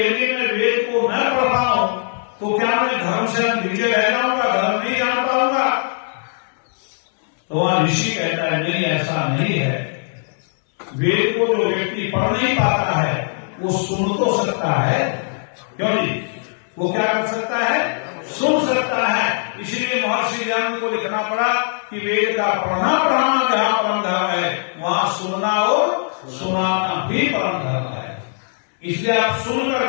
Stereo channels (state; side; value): silent; right; digital silence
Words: मैं वेद को न पढ़ पाऊं तो क्या मैं धर्म से नीचे रह जाऊंगा, धर्म नहीं जान पाऊंगा? तो वहां ऋषि कहता है नहीं, ऐसा नहीं है। वेद को जो व्यक्ति पढ़ नहीं पाता है वो सुन तो सकता है, क्यों नहीं? वो क्या कर सकता है? सुन सकता है। इसलिए महर्षि ज्ञान को लिखना पड़ा कि वेद का पढ़ना पढ़ाना जहां परम धर्म है, वहां सुनना और सुनाना भी परम धर्म है। इसलिए आप सुन